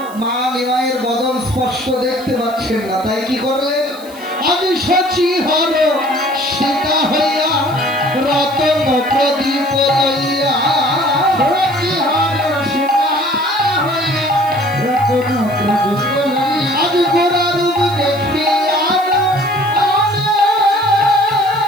মা নিমাইয়ের বদন স্পষ্ট দেখতে পাচ্ছেন না, তাই কি করলেন? আমি সচি হর সীতা হইয়া রতন প্রদীপ লইয়া, সচি হর সীতা হইয়া রতন প্রদীপ লইয়া, আজ গোরা রূপ দেখিয়া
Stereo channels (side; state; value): right; noise; hiss, 21 dB below the sound